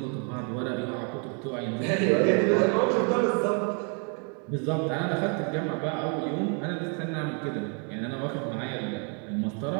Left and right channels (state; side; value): quieter; left; 38.6 dB